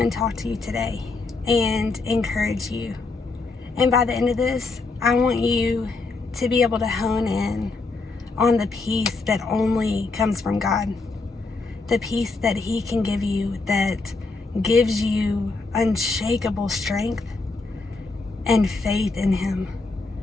talk to you today and encourage you. And by the end of this, I want you to be able to hone in on the peace that only comes from God. The peace that He can give you that gives you unshakable strength and faith in Him.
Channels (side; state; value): right; quieter; 3.8 dB